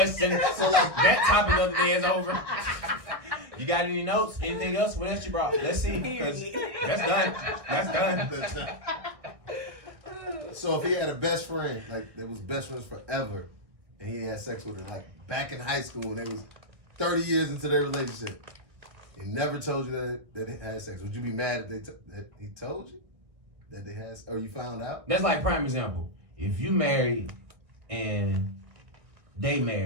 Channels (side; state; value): left; late; 1.6 ms